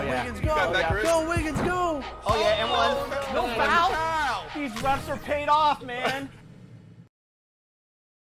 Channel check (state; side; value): identical; both; correlation 1.00